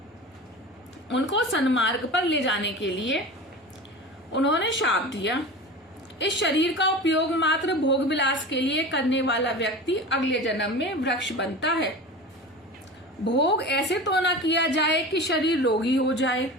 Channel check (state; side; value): normal; both; correlation 0.32